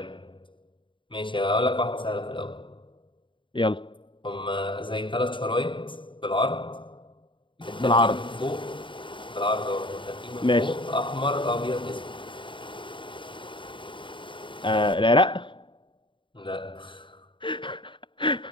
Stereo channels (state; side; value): late; right; 0.24 ms